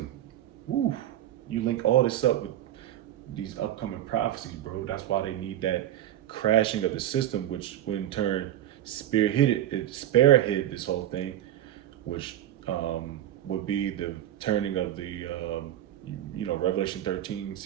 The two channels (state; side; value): quieter; left; 12.4 dB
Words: Woo, you link all this up with these upcoming prophecies, bro. That's why they need that crashing of the system, which in turn spearhead this whole thing, which would be the turning of the Revelation